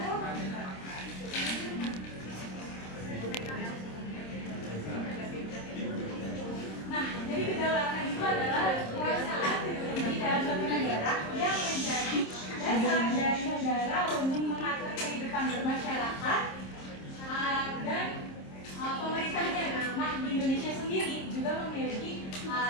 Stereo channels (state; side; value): late; right; 26 ms